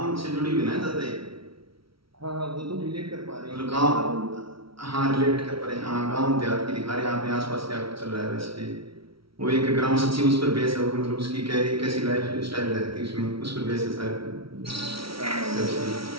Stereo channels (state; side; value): late; left; 0.75 ms